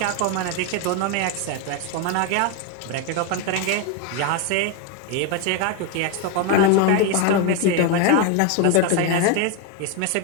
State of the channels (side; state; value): both; different; correlation 0.02